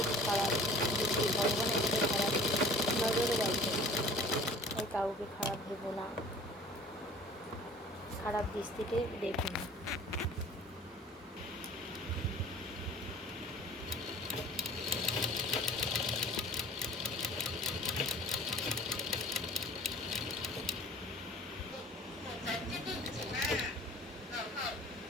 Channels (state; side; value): normal; both; correlation 0.46